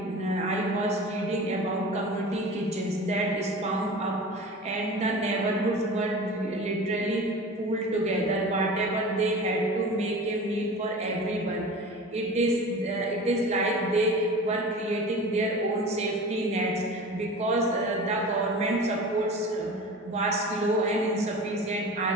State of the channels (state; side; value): normal; both; correlation 0.36